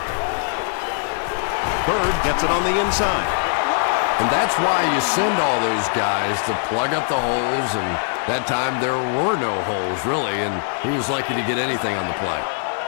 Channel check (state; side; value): silent; right; digital silence